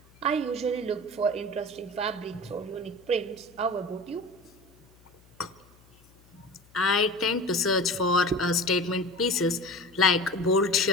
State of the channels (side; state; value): left; noise; hum, 29 dB below the sound